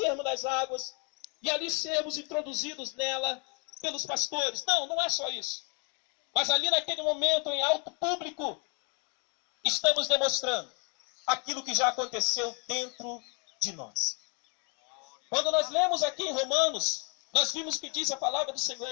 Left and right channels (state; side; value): quieter; right; 36.5 dB